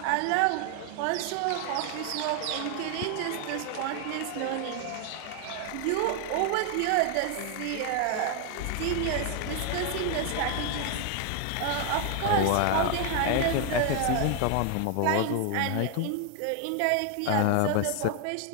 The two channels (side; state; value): both; different; correlation 0.00